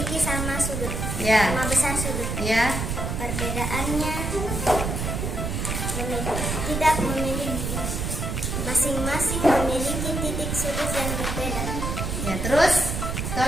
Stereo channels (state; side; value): noise; right; rumble, 2 dB below the sound